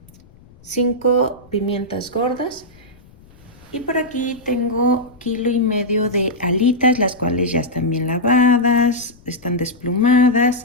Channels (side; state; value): left; noise; rumble, 26 dB below the sound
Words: 5 pimientas gordas y por aquí tengo 1,5 kg de alitas, las cuales ya están bien lavadas, están desplumadas.